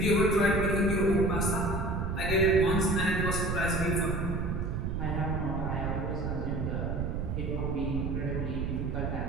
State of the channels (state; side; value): noise; right; rumble, 2 dB below the sound